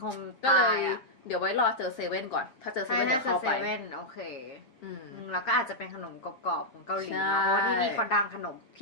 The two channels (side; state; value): right; late; 7.5 ms